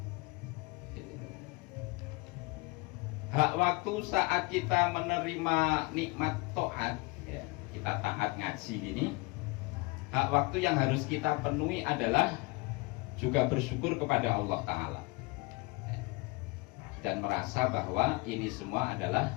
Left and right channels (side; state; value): right; quieter; 25.8 dB